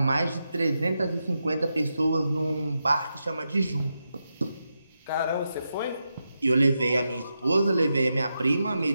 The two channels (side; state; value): both; inverted; correlation -0.87